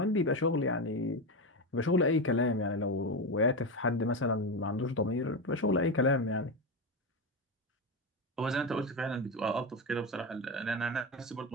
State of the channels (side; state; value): both; normal; correlation 0.15